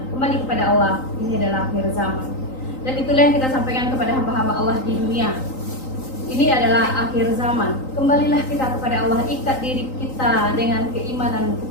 Kembali kepada Allah, ini adalah akhir zaman. Dan itulah yang kita sampaikan kepada hamba-hamba Allah di dunia. Ini adalah akhir zaman. Kembalilah kita kepada Allah, ikat diri kita dengan keimanan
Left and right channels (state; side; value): late; right; 3.9 ms